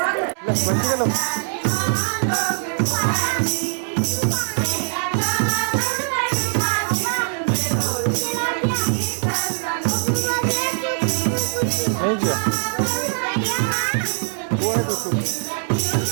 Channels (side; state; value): left; silent; 63 dB below the other